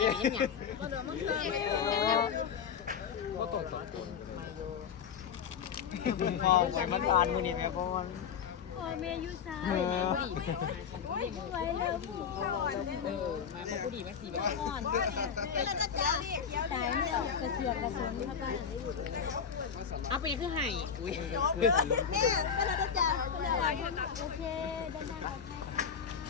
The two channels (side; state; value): right; quieter; 7.1 dB